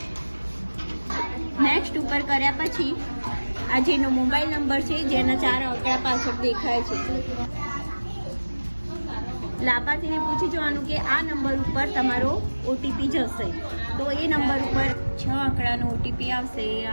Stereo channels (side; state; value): both; inverted; correlation -1.00